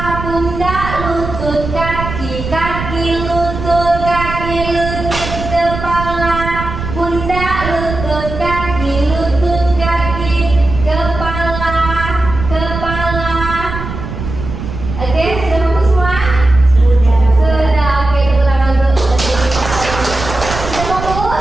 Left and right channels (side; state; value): right; noise; rumble, 7 dB below the sound